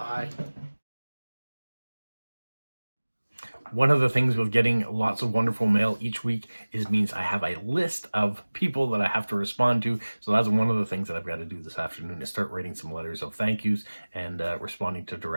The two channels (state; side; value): inverted; both; correlation -1.00